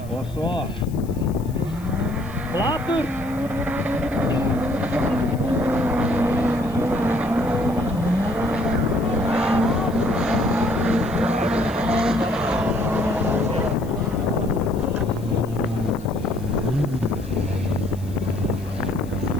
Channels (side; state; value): left; noise; hiss, 23 dB below the sound